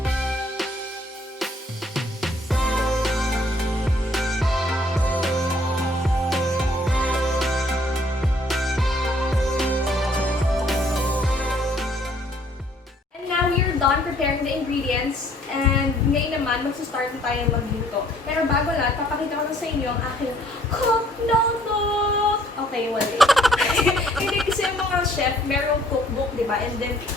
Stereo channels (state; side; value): normal; both; correlation 0.62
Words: Done preparing the ingredients, and ngayon naman magsa-start na tayo magluto. Pero bago lahat, papakita ko na sa inyo ang aking cook notebook! Okay, wala. Hindi kasi yung mga chef, merong cookbook, di ba? And then,